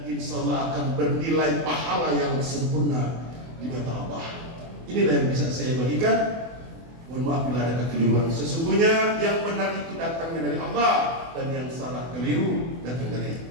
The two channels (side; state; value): left; late; 24 ms